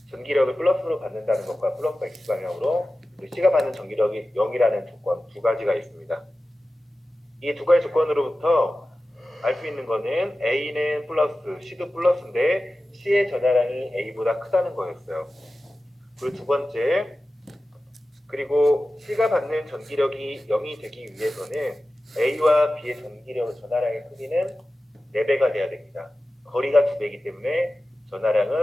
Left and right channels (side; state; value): both; normal; correlation 0.95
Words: 전기력을 플러스로 받는다는 것과 플러스 X 방향으로 C가 받는 전기력이 0이라는 조건 두 가지가 있습니다. 이 두 가지 조건으로부터 알 수 있는 거는 A는 플러스, C도 플러스인데 C의 전하량이 A보다 크다는 거였어요. 그리고 두 번째, 그리고 C가 받는 전기력이 0이 되기 위해서는 A와 B의 전하량의 크기는 4배가 돼야 됩니다. 거리가 2배이기 때문에